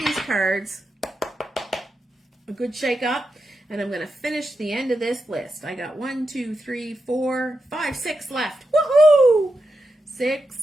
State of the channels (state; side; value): normal; both; correlation 0.87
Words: cards a good shake up. And I'm going to finish the end of this list. I got 1, 2, 3, 4, 5, 6 left. Woohoo!